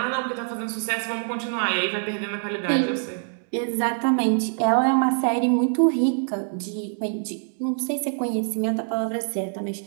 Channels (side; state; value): left; silent; 59 dB below the other